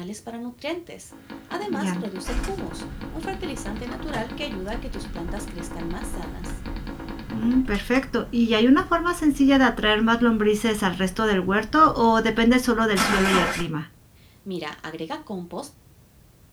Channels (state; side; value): identical; both; correlation 1.00